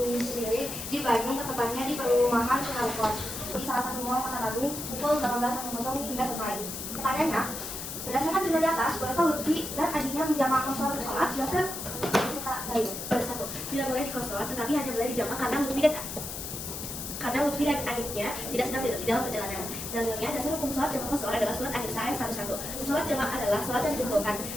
di Bandung, tepatnya di perumahan Sukarpot, di salah satu mall Kota Bandung, pukul 18.00 hingga selesai. Pertanyaannya, berdasarkan cerita di atas, bolehkah Lutfi dan adiknya menjamaah kosong sholat? Jelaskan cerita lain. Satu, tidak boleh di kosong, tetapi hanya boleh dijamaah karena Lutfi dan adiknya tidak sedang di dalam perjalanan. Dalilnya, dasar hukum sholat jamaah kosor adalah surat An-Nisa ayat 11. Sholat jamaah adalah sholat yang dikumpulkan.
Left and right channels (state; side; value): noise; left; hiss, 7 dB below the sound